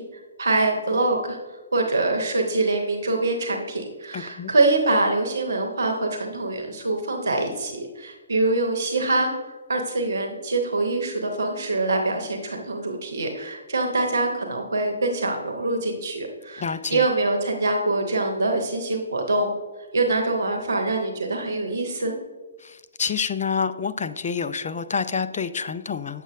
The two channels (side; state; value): both; inverted; correlation -0.64